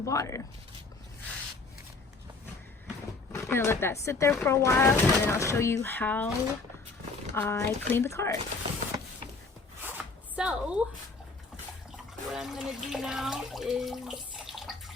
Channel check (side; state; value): right; quieter; 3.9 dB